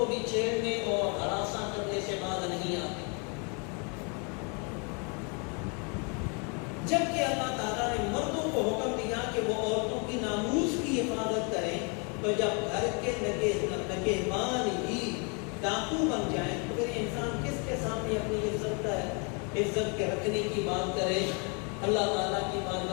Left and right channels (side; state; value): right; quieter; 35.2 dB